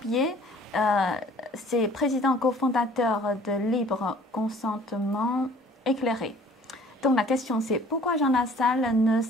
c'est président cofondateur de Libre Consentement Éclairé. Donc la question c'est pourquoi Jean Lassalle ne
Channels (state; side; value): normal; both; correlation 0.52